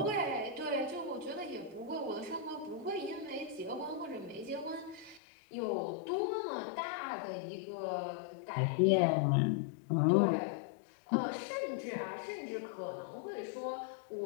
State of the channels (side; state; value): right; drops out; at 5.2 s